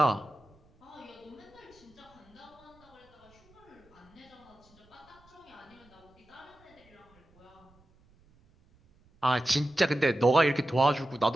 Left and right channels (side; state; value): right; noise; rumble, 30 dB below the sound